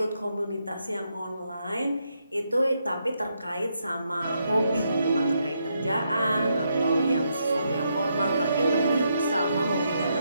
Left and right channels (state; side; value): inverted; both; correlation -0.79